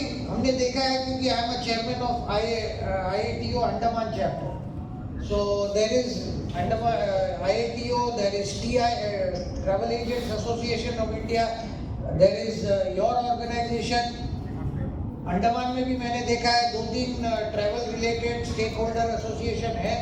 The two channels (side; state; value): both; identical; correlation 1.00